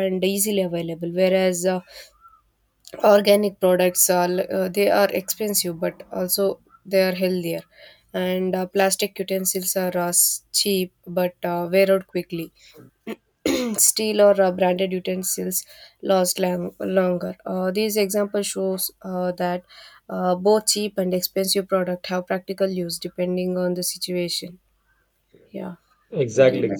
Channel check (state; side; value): identical; both; correlation 1.00